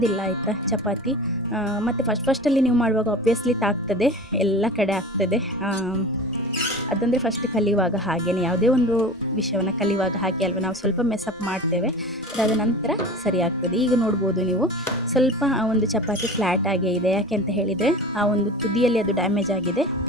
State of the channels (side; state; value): both; normal; correlation 0.35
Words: ಆಯಿತಾ ಚಪಾತಿ. ಮತ್ತು ಫಸ್ಟಲ್ಲಿ ನೀವು ಮಾಡುವಾಗ ಆಬ್ವಿಯಸ್ಲಿ ತಾಗ್ತದೆ, ಎಲ್ಲ ಕಡೆ ಆಗ್ತದೆ. ಅದಂದರೆ ಫಸ್ಟ್ ಕಲಿಯುವಾಗ ಹಾಗೆಯೇ, ಯಾವುದೇ ಒಂದು ವಿಷಯವನ್ನು ಕಲಿಯುವಾಗ ಹಾಗೆ ಅಲ್ವ, ನಾವು ಸ್ವಲ್ಪ ಮೆಸಪ್ ಮಾಡ್ತೇವೆ, ಅದಾದ ನಂತರ ಸರಿ ಆಗ್ತದೆ. ಈಗ ನೋಡ್ಬೋದು ನೀವು, ಸ್ವಲ್ಪ ಆ ಒಂದು ಚಪಾತಿ ಫ್ಲ್ಯಾಟ್ ಆಗೇ ಇದೆ. ಯಾಕೆ ಅಂತ ಹೇಳಿದರೆ ಆ ಒಂದು ತುದಿಯಲ್ಲಿ ಅದು ಡ್ಯಾಮೇಜ್ ಆಗಿದೆ,